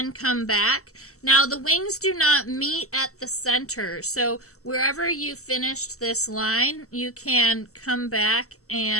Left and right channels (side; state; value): right; late; 0.64 ms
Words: come back. Now the wings do not meet at the center, so wherever you finished this line, you can come back